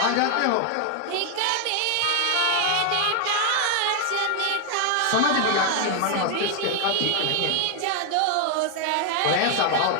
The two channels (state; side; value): different; both; correlation 0.00